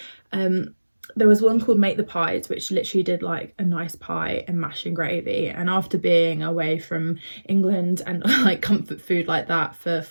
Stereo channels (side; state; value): both; inverted; correlation -1.00